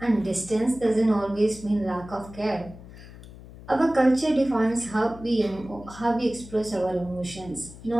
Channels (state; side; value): noise; left; hum, 17 dB below the sound